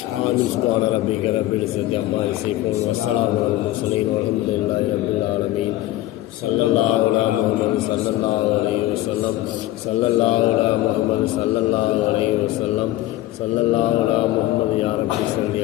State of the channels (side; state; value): right; quieter; 15.9 dB